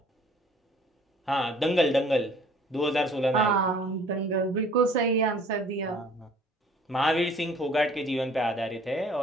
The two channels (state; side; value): normal; both; correlation 0.54